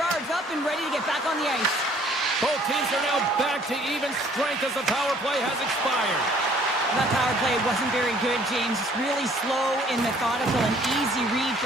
up and ready to get back on the ice. Both teams are now back to even strength as the power play has expired. That power play wasn't very good, James. It's really slow and methodical, an easy read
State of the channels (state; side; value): normal; both; correlation 0.58